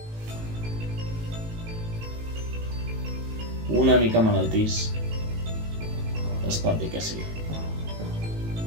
Una mica malaltís, es pot dir que sí.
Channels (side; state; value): left; late; 18 ms